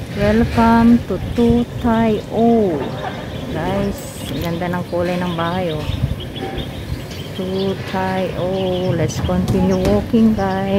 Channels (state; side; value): identical; both; correlation 1.00